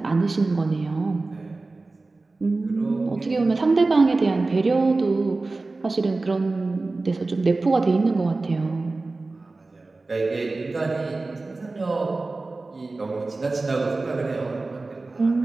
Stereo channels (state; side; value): quieter; left; 3.4 dB